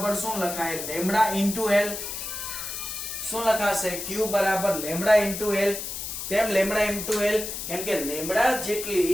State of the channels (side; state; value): left; noise; hiss, 6 dB below the sound